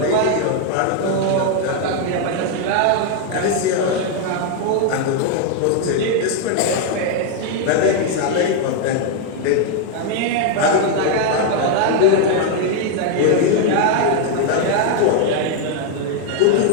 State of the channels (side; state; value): both; different; correlation 0.00